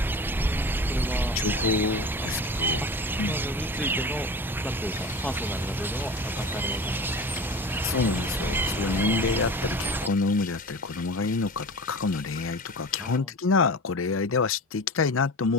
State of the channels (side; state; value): both; normal; correlation 0.34